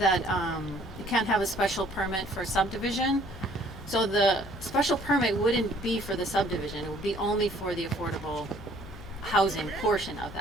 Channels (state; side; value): noise; left; hum, 15 dB below the sound